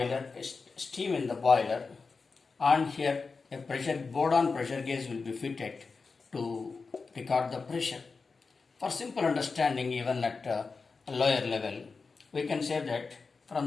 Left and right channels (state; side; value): quieter; right; 4.5 dB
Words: steam in the boiler, and here a board-on pressure gauge will be fitted to record the pressure. For simple understanding, even at a lower level, we can say that